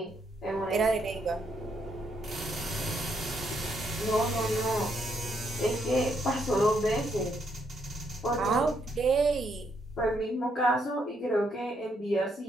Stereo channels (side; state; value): both; normal; correlation 0.75